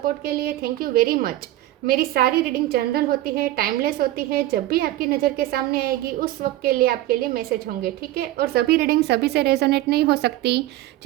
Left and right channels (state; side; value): quieter; left; 15.6 dB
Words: के लिए थैंक यू वेरी मच। मेरी सारी रीडिंग जनरल होती है, टाइमलेस होती है। जब भी आपकी नज़र के सामने आएगी उस वक्त के लिए आपके लिए मैसेज होंगे, ठीक है। और सभी रीडिंग सभी से रेजोनेट नहीं हो सकती।